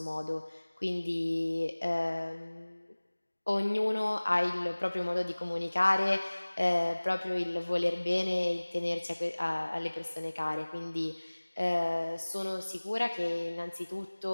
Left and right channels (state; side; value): inverted; both; correlation -1.00